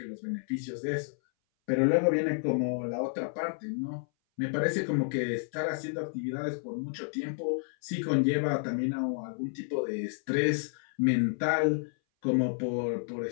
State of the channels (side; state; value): right; silent; 57 dB below the other